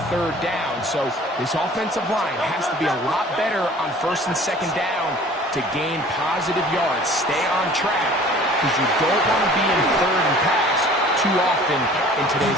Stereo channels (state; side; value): normal; both; correlation 0.48